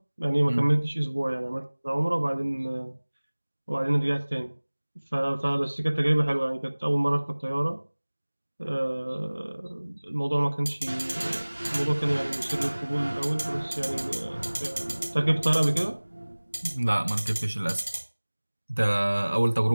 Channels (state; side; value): inverted; both; correlation -1.00